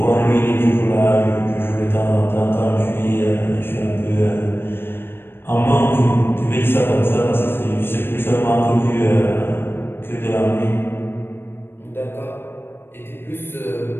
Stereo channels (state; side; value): late; right; 0.10 ms